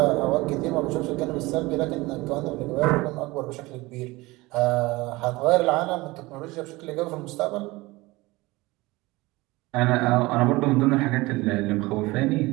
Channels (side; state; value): left; quieter; 21.3 dB